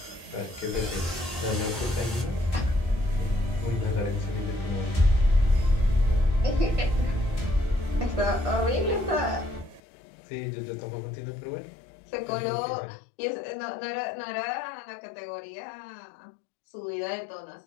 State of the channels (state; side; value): drops out; right; at 9.8 s